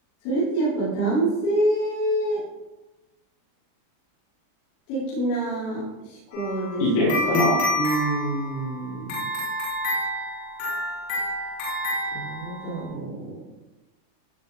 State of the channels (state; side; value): late; right; 40 ms